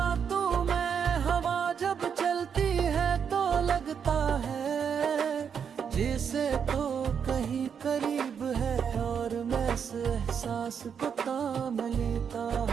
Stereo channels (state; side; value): quieter; left; 7.2 dB